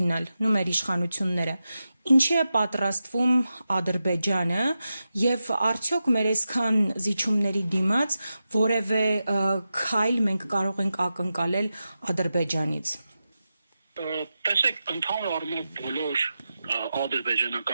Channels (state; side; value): inverted; both; correlation -0.91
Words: մեր իշխանությունները, ինչի է պատրաստվում Ադրբեջանը եւ արդյոք մեր այսքան զիջումների դիմաց որևէ քայլ մենք կարող ենք ակնկալել Ադրբեջանից։ Տեսեք, ընդհանուր առմամբ բոլոր